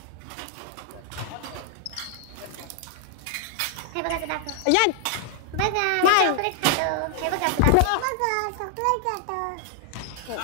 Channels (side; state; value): both; different; correlation 0.00